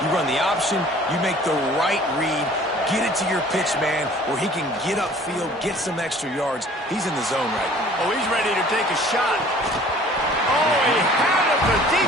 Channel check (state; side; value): normal; both; correlation 0.51